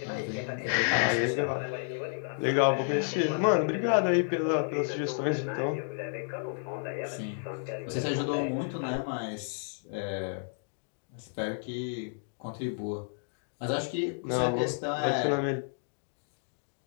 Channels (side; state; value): right; silent; digital silence